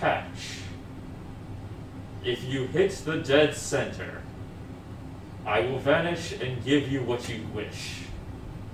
If you hit the dead center, I will vanish and give you what you wish.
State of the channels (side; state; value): both; identical; correlation 1.00